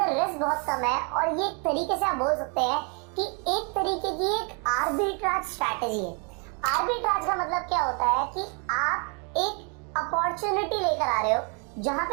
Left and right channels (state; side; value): quieter; left; 36.1 dB